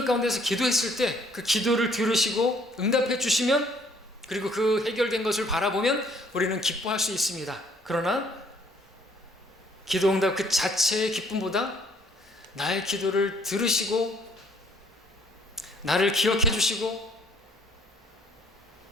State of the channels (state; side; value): normal; both; correlation 0.62